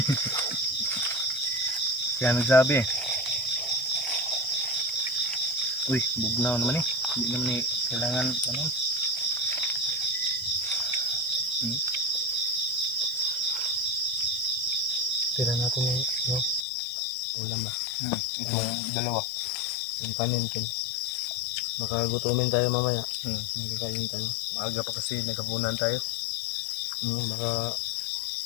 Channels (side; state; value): right; drops out; at 16.7 s